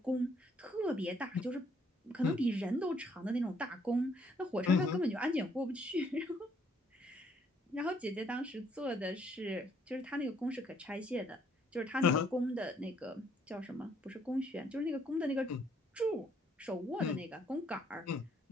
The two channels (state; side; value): normal; both; correlation 0.67